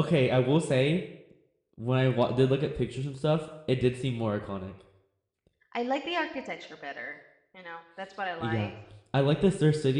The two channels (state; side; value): identical; both; correlation 1.00